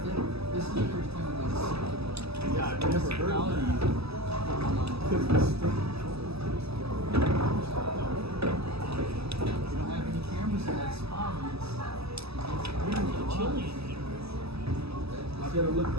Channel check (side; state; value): left; late; 0.78 ms